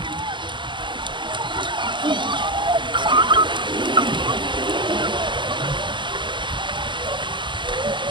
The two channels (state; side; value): late; left; 0.23 ms